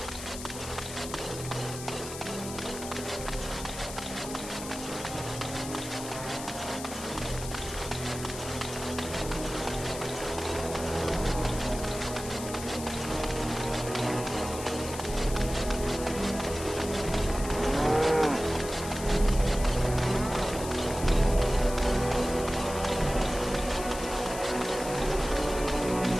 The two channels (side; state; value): left; noise; hiss, 10 dB below the sound